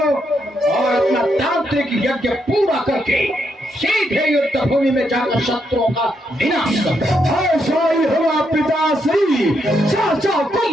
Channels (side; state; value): both; normal; correlation 0.79